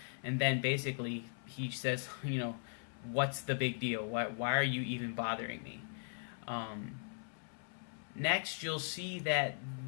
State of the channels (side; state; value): right; silent; 52 dB below the other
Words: and then basically he says, what's the big deal? Why are you even bothering me? Next, you'll see that